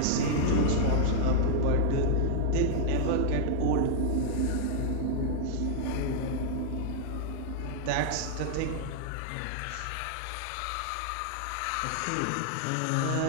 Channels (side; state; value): both; different; correlation -0.01